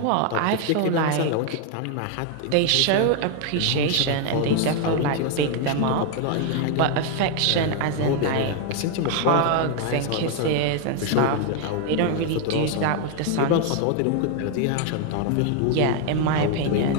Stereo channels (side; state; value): both; different; correlation 0.00